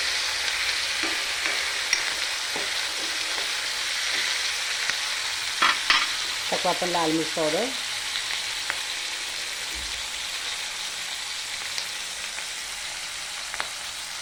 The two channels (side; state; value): both; identical; correlation 1.00